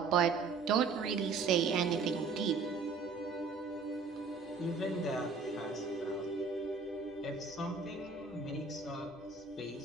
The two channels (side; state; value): left; quieter; 4.6 dB